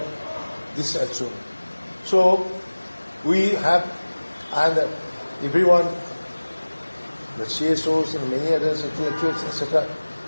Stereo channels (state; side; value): inverted; both; correlation -1.00